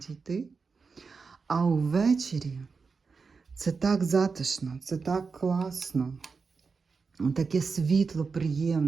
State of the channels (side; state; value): left; quieter; 4.9 dB